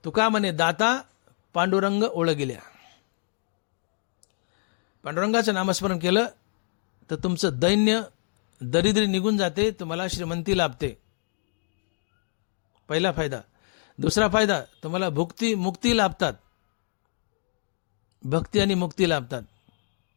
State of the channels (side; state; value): right; silent; 60 dB below the other